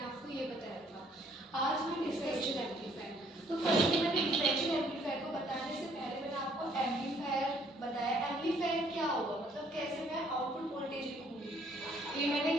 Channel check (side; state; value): both; normal; correlation 0.63